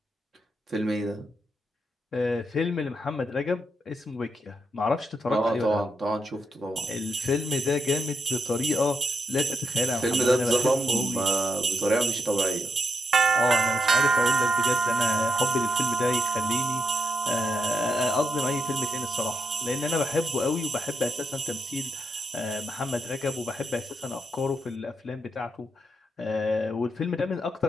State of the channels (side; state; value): both; normal; correlation 0.82